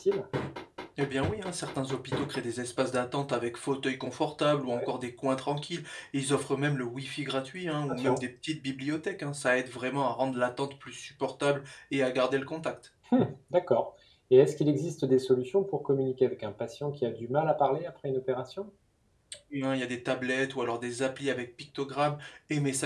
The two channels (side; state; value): both; identical; correlation 1.00